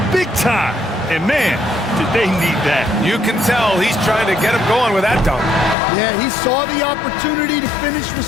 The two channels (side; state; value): right; drops out; at 5.8 s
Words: Big time. And man, did they need that. You can tell he's trying to get him going with that dunk. Yeah, he saw the opportunity to finish with